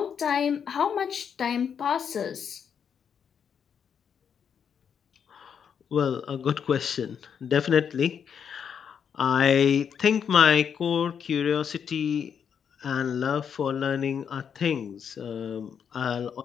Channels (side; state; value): right; quieter; 7.5 dB